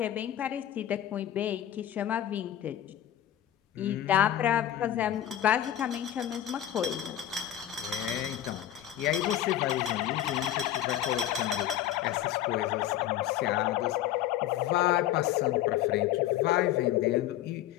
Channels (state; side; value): quieter; right; 11.9 dB